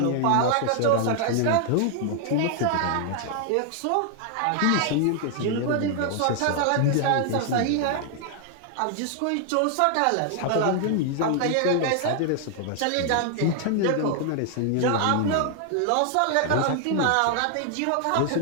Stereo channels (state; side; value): different; both; correlation 0.00